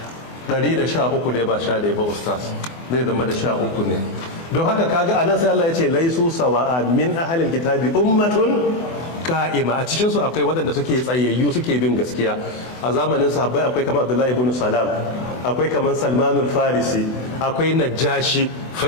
113 ne ba 11 ba ustaz, zai zama da 13 ne. don haka kaga anan sai Allah ya ce laisu sawa'a min ahlil kitabi ummatun ka'ima, a cikin su akwai waɗanda suke tsayayyu suke bin gaskiya. A zamanin sahabbai akwai kamar Abdullahi ibn Salam, akwai kamar Salmanul Farisi, akwai Najashi, fa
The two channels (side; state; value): right; late; 24 ms